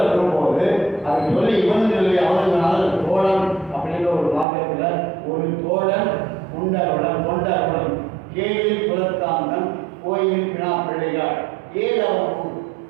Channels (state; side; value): drops out; left; at 4.5 s